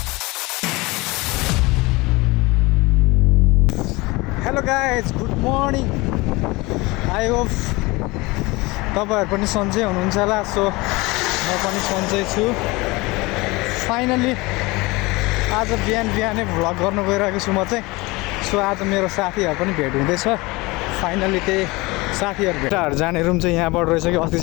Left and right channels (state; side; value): quieter; right; 23.1 dB